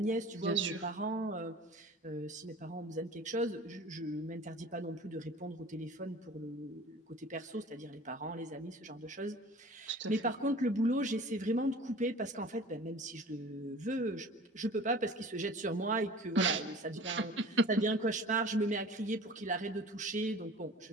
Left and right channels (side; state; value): both; normal; correlation 0.43